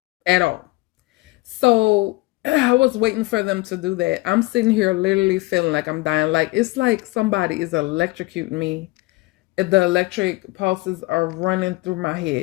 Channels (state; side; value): quieter; right; 21.8 dB